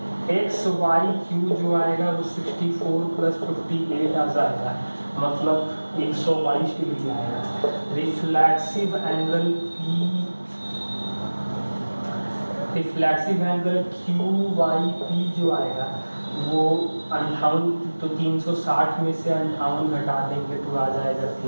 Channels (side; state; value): both; inverted; correlation -1.00